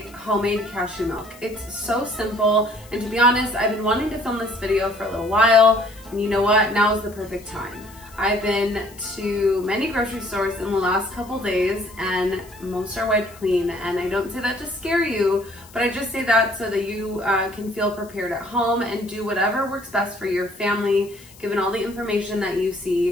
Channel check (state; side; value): noise; left; hiss, 23 dB below the sound